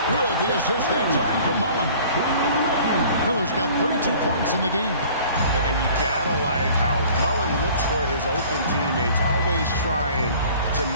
good. The assist that time from Mullen. Miller's got 32 points in the game. And you gotta like how Mullen looks for his open teammates, always trying to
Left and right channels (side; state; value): both; inverted; correlation -0.49